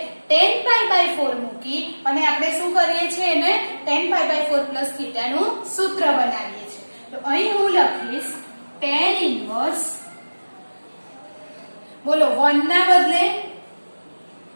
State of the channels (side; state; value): both; inverted; correlation -1.00